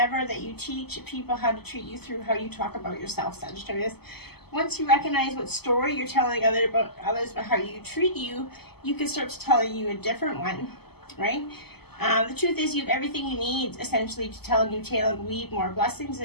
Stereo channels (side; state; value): right; late; 0.96 ms